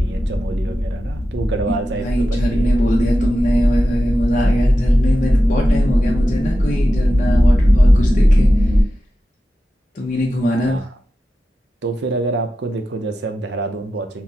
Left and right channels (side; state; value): both; normal; correlation 0.92